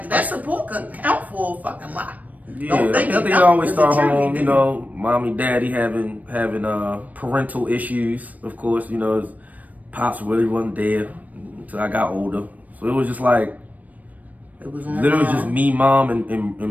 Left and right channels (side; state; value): left; late; 0.074 ms